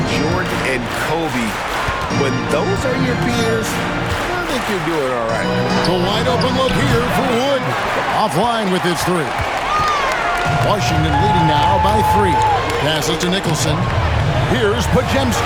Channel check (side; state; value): both; identical; correlation 1.00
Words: Jordan and Kobe. When those are your peers, I think you're doing all right. The wide open look here for Wood. Offline with his 3. Washington leading now by 3. Passes to Nicholson. Here's